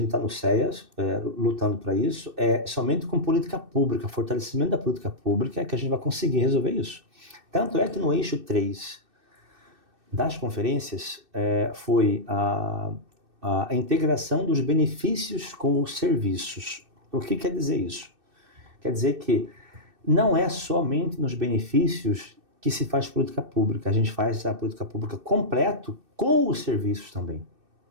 está no CEAS, lutando para isso, somente com política pública, fortalecimento da política pública, é que a gente vai conseguir resolver isso. Tanto é que no eixo 3 das conferências foi a integração dos benefícios com os serviços. O que quer dizer isso? Quer dizer que não é somente nos benefícios que se faz política pública, a gente faz a política pública completo com os serviços também.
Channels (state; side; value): late; left; 2.6 ms